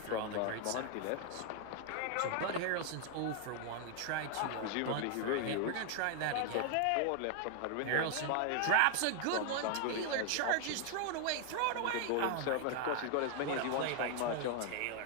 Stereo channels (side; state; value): both; different; correlation 0.00